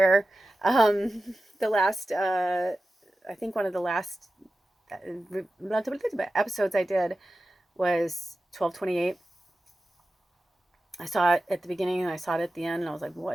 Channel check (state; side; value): normal; both; correlation 0.94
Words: The last, I think one of the last episodes I did was 1228. I saw it at the beginning and I saw it at the end and I was like,